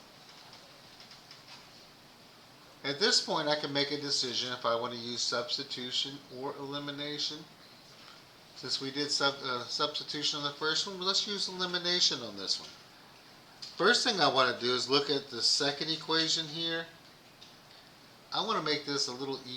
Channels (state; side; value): identical; both; correlation 1.00